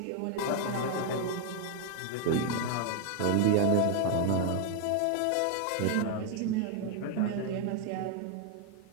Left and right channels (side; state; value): both; different; correlation 0.00